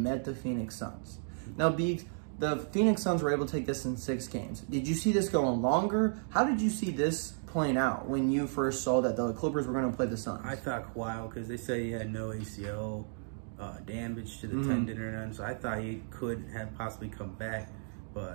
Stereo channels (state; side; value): silent; left; digital silence